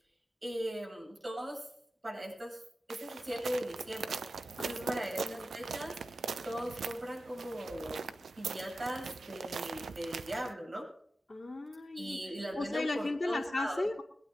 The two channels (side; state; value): both; normal; correlation 0.93